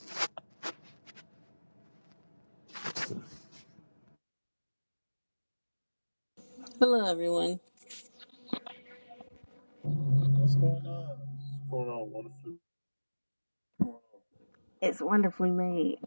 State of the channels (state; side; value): inverted; both; correlation -1.00